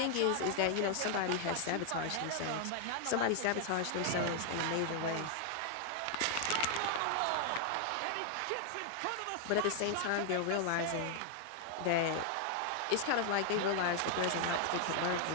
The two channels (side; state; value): both; different; correlation 0.00